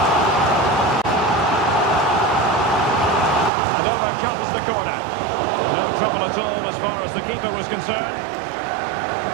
And over comes the corner. No trouble at all as far as the keeper was concerned.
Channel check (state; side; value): drops out; left; at 3.5 s